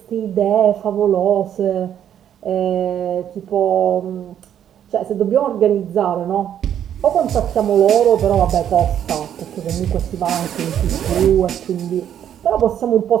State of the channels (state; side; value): quieter; left; 9.9 dB